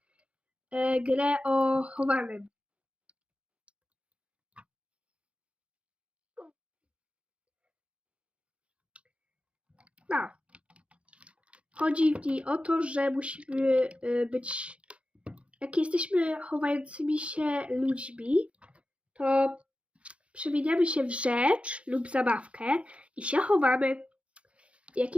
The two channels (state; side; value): late; left; 0.061 ms